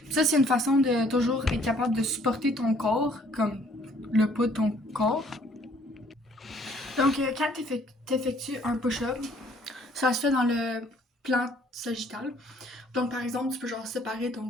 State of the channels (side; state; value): both; normal; correlation 0.61